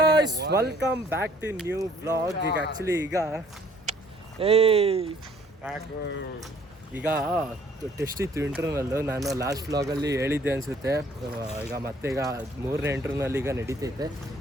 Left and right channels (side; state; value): both; normal; correlation 0.59